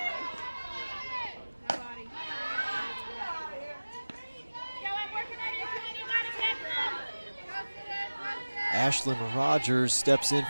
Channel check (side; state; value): both; inverted; correlation -1.00